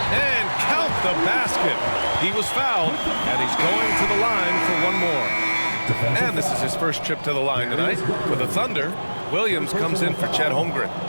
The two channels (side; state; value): both; inverted; correlation -1.00